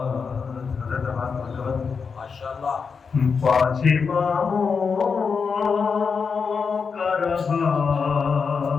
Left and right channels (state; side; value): quieter; right; 5.6 dB